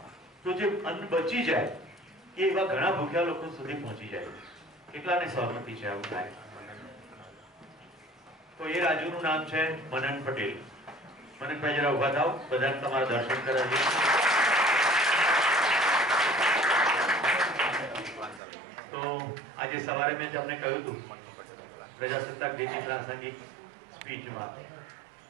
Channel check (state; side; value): drops out; left; at 18.4 s